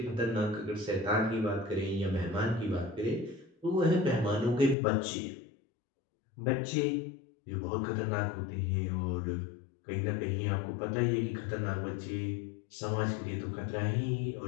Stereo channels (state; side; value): drops out; right; at 4.8 s